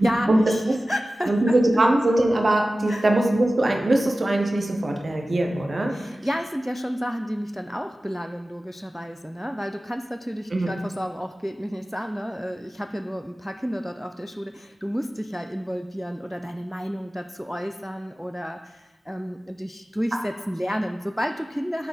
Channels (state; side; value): normal; both; correlation 0.96